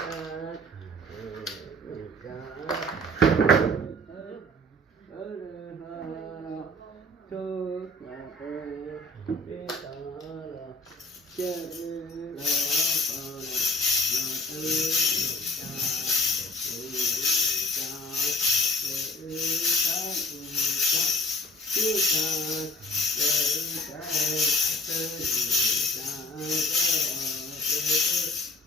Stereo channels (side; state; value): both; normal; correlation 0.51